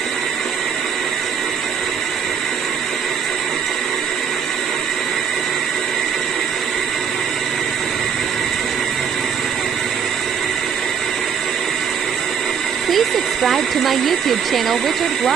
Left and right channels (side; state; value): left; quieter; 7.1 dB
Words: Please subscribe to my YouTube channel, Richard